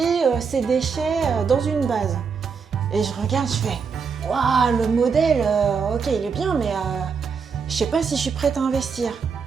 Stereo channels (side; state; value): left; quieter; 5.8 dB